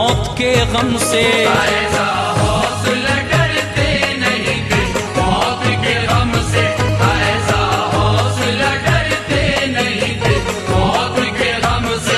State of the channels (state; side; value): identical; both; correlation 1.00